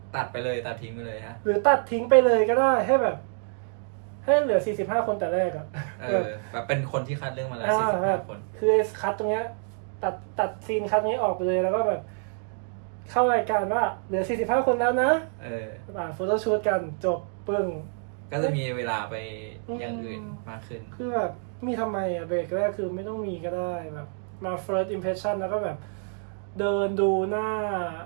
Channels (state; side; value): silent; left; 60 dB below the other